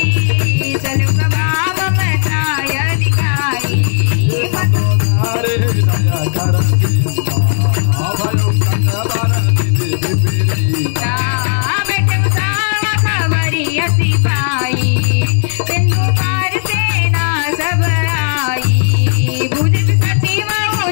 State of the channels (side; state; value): right; silent; digital silence